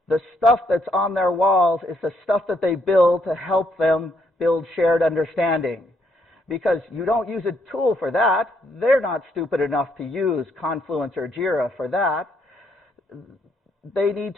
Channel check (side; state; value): both; normal; correlation 0.73